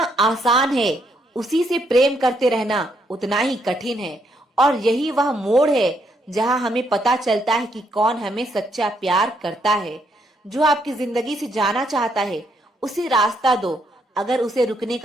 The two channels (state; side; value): normal; both; correlation 0.74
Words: है, उसी से प्रेम करते रहना उतना ही कठिन है। और यही वह मोड़ है जहां हमें पता चलता है कि कौन हमें सच्चा प्यार करता है। जो आपकी जिंदगी से जाना चाहता है उसे रास्ता दो। अगर उसे रुकने